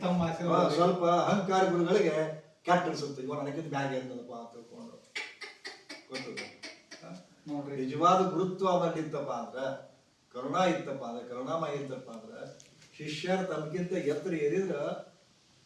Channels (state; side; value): identical; both; correlation 1.00